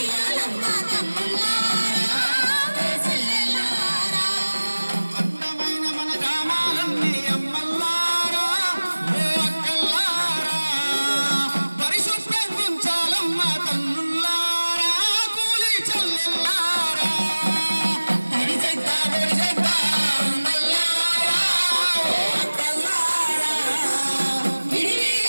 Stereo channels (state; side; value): inverted; both; correlation -1.00